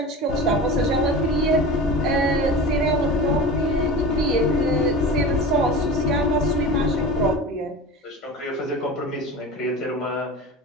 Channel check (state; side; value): normal; both; correlation 0.32